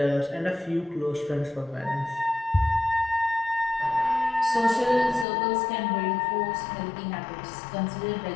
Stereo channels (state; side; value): drops out; right; at 5.2 s